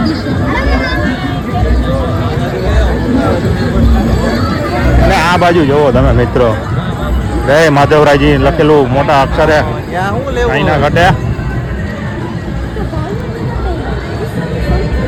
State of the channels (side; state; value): both; identical; correlation 1.00